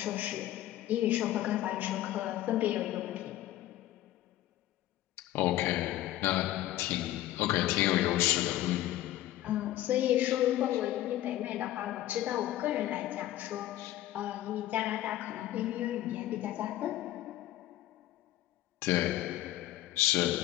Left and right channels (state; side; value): quieter; right; 14.2 dB